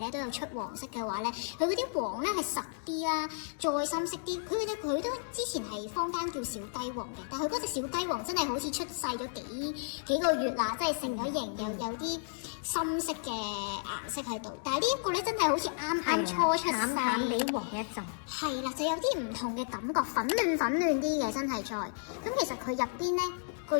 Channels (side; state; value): right; silent; digital silence